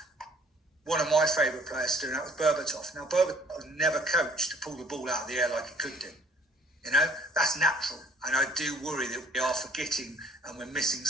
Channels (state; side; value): normal; both; correlation 0.57